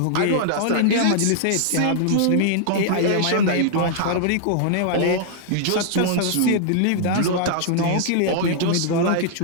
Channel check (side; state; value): both; different; correlation -0.01